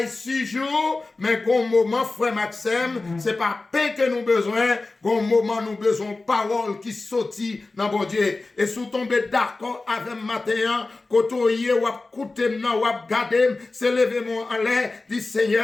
6 jours, mais gon moment, frère Maxime, c'est pas pain que nous besoin, gon moment nous besoin parole qui sortit dans bon Dieu. Et sous tomber d'accord avec matin, côtoyer ou écouter nan ou garder, c'est lever mon en l'air, dit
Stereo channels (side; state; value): right; quieter; 3.4 dB